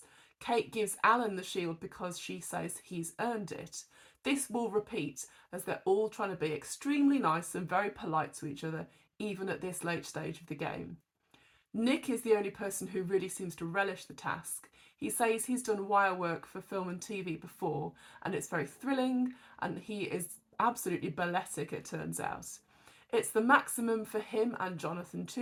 Kate gives Alan the shield because she says he's earned it. This will repeat as they're all trying to be extremely nice and very polite to each other, even at this late stage of the game. Nick is the only person who really seems to relish the task. He says he's done wire work for film and TV before, and it's very thrilling, and he is absolutely balletic, it turns out. It's the maximum for him and Jonathan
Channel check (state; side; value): identical; both; correlation 1.00